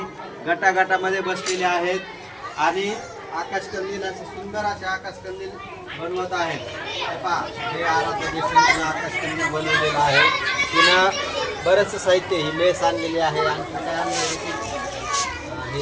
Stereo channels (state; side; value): identical; both; correlation 1.00